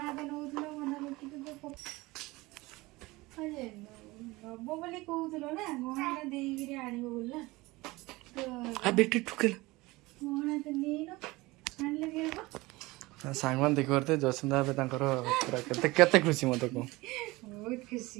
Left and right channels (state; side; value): quieter; left; 21.3 dB